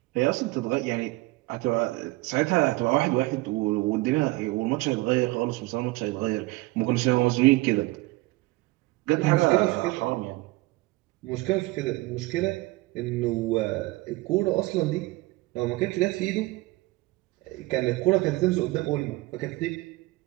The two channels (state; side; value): quieter; left; 21.2 dB